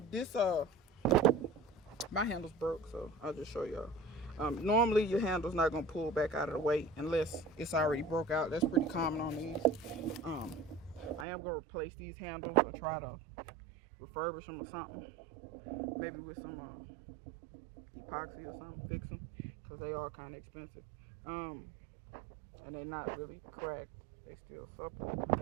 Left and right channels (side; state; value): left; drops out; at 11.2 s